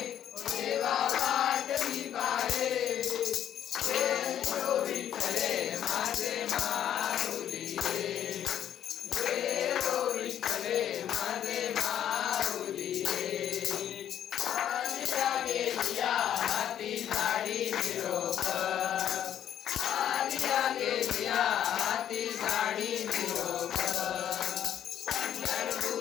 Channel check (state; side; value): quieter; right; 10.4 dB